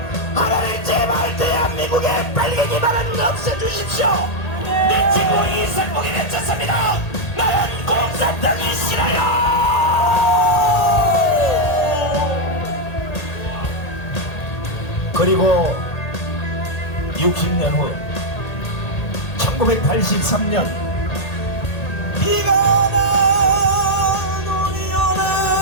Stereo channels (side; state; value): right; late; 1.8 ms